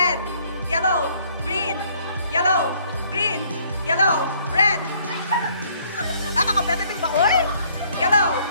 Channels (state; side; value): inverted; both; correlation -0.62